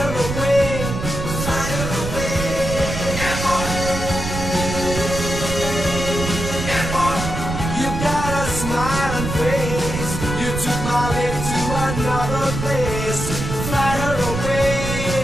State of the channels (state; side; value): noise; right; rumble, 5 dB below the sound